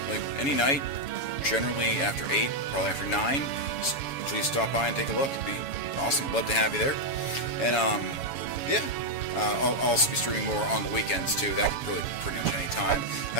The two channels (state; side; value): late; right; 7.1 ms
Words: like, any night, generally after 8, probably after 9. So please stop by and take a look. It'd be awesome. Love to have you there. And, yeah. I'll also be streaming more on the weekends, too. That could really pretty much any time.